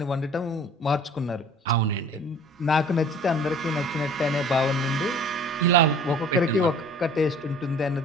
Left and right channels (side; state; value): both; normal; correlation 0.48